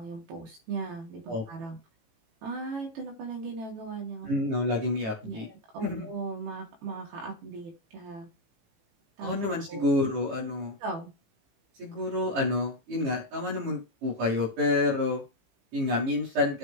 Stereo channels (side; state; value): left; late; 18 ms